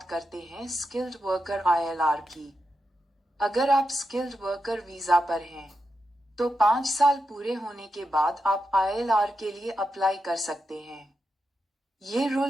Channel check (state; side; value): normal; both; correlation 0.87